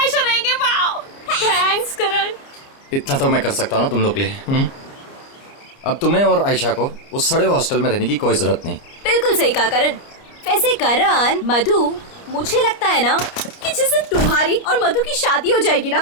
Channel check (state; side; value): late; right; 29 ms